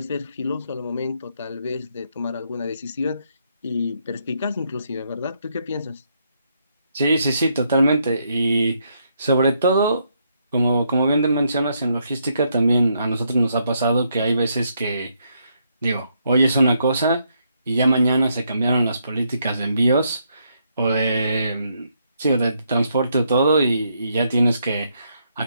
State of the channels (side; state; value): both; inverted; correlation -0.76